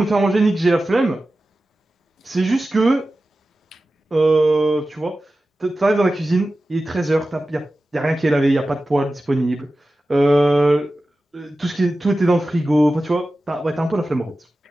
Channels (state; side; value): normal; both; correlation 0.94